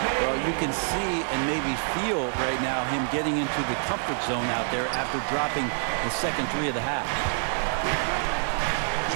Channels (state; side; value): silent; left; digital silence